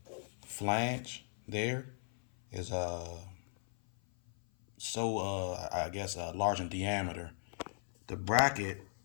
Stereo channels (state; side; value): silent; right; 53 dB below the other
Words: flange there is I guess large in diameter. The bracket